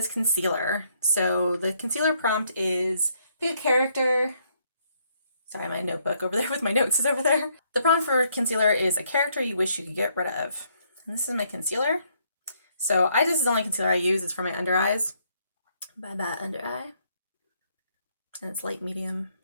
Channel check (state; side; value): inverted; both; correlation -0.71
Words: concealer. So the concealer prompt is pick a character. Sorry, my notebook over there with my notes is over there. The prompt for concealer is a character you wish you could get rid of. And this is my concealer. So this is the only concealer I use. It's for my under eyes. Bye bye under eye. And it's light medium